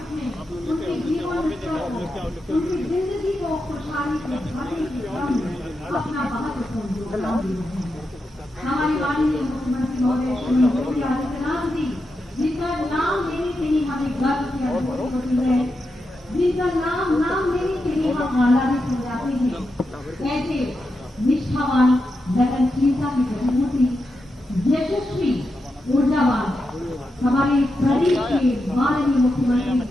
में उनके जीवन उनकी जिंदगी को खुशहाली से भरने के अपना महत्वपूर्ण योगदान दिया। हमारे माननीय मुख्यमंत्री महोदय श्री योगी आदित्यनाथ जी, जिनका नाम लेने से ही हमें गर्व की अनुभूति होती है, जिनका नाम लेने से ही हम आह्लादित हो जाते हैं, ऐसे निष्ठावान, लगनशीलता की प्रतिमूर्ति, यशस्वी, ऊर्जावान हमारे प्रदेश के माननीय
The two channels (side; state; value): both; normal; correlation 0.87